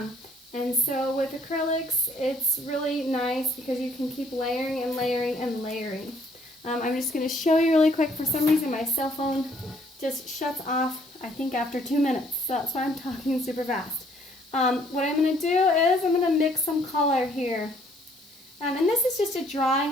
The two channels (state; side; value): noise; right; hiss, 23 dB below the sound